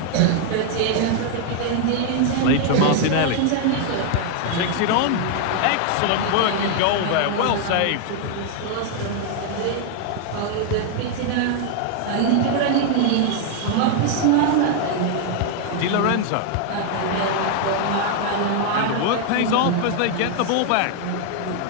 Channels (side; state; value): both; different; correlation 0.00